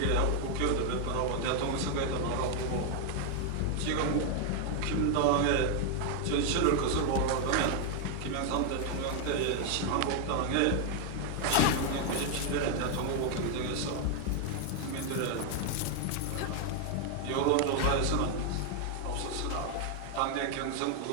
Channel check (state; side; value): different; both; correlation 0.00